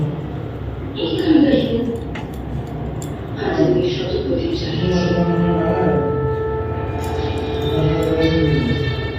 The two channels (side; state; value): both; identical; correlation 1.00